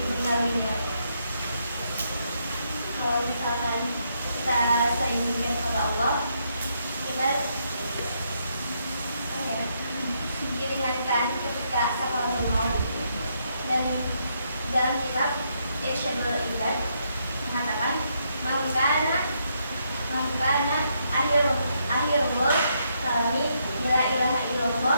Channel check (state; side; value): inverted; both; correlation -0.76